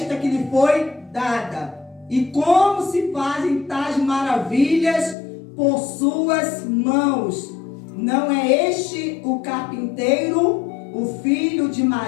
que lhe foi dada? E como se fazem tais maravilhas por suas mãos? Não é este o carpinteiro, o filho de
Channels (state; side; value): drops out; right; at 5.2 s